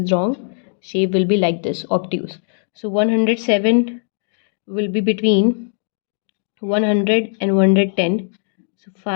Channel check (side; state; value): right; silent; 66 dB below the other